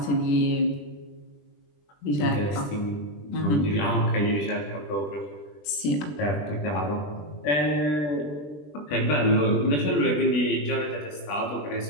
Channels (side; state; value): right; late; 20 ms